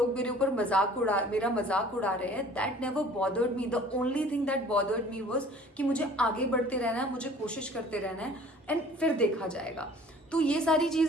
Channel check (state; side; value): normal; both; correlation 0.50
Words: मेरे ऊपर मेरा मजाक उड़ा रहे हैं, that never bothered me. The only thing that bothered me was कि मुझे आगे बढ़ते रहना है, मुझे कोशिश करते रहना है, एंड फिर देखा जाएगा. तो ये सारी